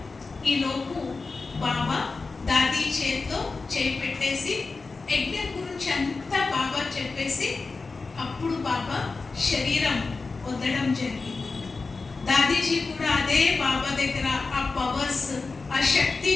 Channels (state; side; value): quieter; right; 4.0 dB